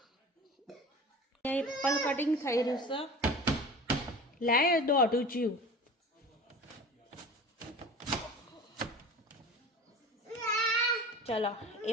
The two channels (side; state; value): both; normal; correlation 0.37